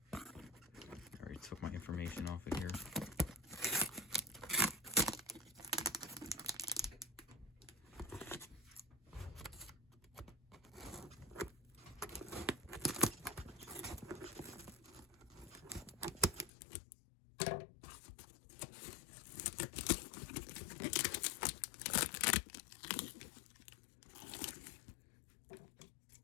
I already took my information off of here.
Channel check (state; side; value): drops out; right; at 16.5 s